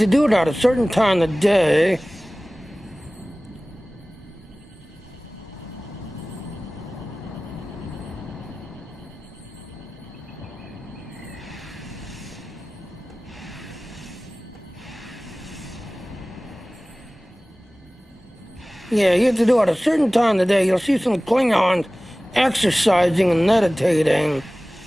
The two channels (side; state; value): both; normal; correlation 0.98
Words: do it at a certain time of day. Yeah, you have to do it at a certain time of the day. You'll see some Klingons exercising and meditating.